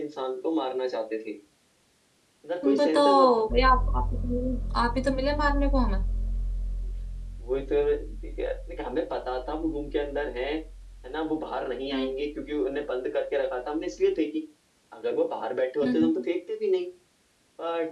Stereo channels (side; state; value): both; identical; correlation 1.00